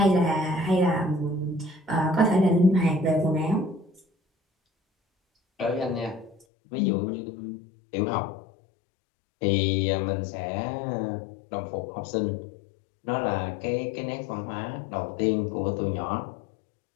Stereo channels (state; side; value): drops out; right; at 6.5 s